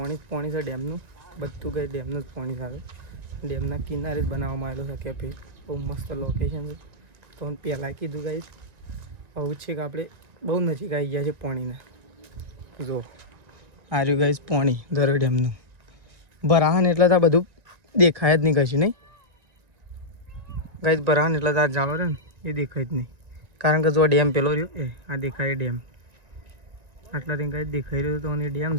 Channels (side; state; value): left; late; 1.9 ms